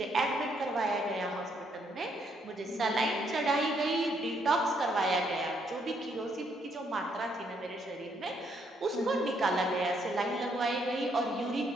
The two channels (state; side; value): normal; both; correlation 0.72